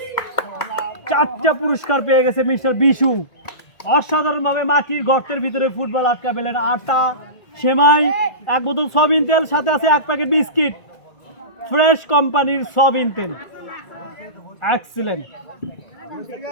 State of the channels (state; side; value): late; right; 1.4 ms